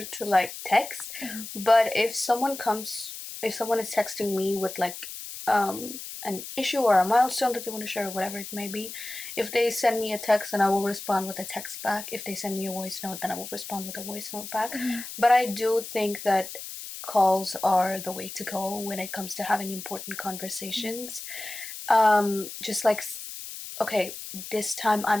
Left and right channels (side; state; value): left; noise; hiss, 10 dB below the sound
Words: to, like, text. Mm-hmm. But if someone is texting me with, like, an issue or a milestone that they want to share or whatever it may be, if they send me a text, then I will respond with a text back. If they send me a voice note, then I will respond with a voice note back. Mm-hmm. But I do think that calls are the way to go when it comes to having important conversations. Just like, okay, this time